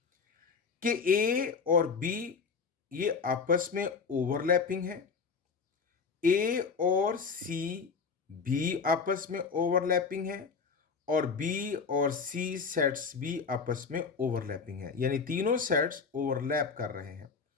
कि ए और बी ये आपस में ओवरलैपिंग है, ए और सी भी आपस में ओवरलैपिंग है, और बी और सी सेट्स भी आपस में ओवरलैपिंग है, यानी तीनों सेट्स ओवरलैप कर रहे हैं।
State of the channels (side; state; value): right; quieter; 5.3 dB